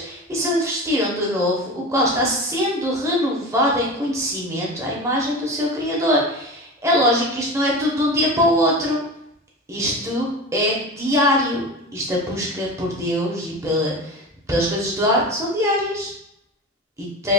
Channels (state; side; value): normal; both; correlation 0.29